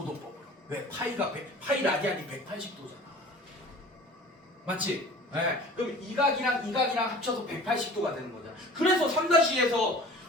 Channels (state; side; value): normal; both; correlation 0.43